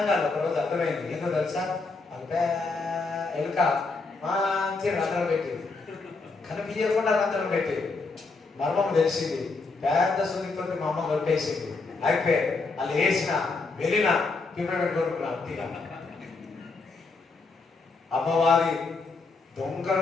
కాదు. ఒకరోజు అర్థమైంది, ఏందో తెలుసా, అల్పే ఎలుక మంచి రంధ్రం పెట్టేది, కనిపించకుండా రంధ్రం పెట్టేది. మర్మం తెలిసింది, పెద్ద సున్నితో మా అమ్మ కొట్టేసింది. అయిపోయి వాళ్ళు వేసిన వెళ్ళిన పిల్లలు కొనుక్కున్నా తీరా. అమ్మవారి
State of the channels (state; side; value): quieter; right; 3.9 dB